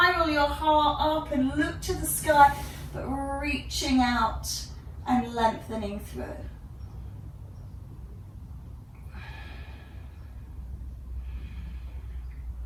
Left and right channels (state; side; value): identical; both; correlation 1.00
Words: your heart up and look to the sky, but reaching out and lengthening through.